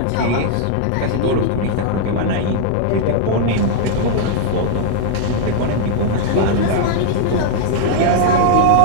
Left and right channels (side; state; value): both; different; correlation -0.01